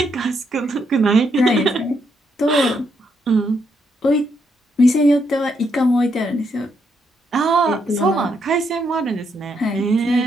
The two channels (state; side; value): normal; both; correlation 0.77